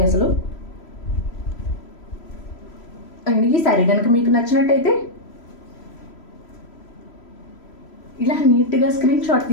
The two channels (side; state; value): right; late; 3.0 ms